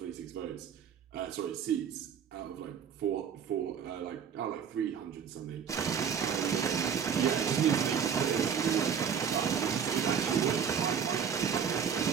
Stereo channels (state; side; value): quieter; left; 7.5 dB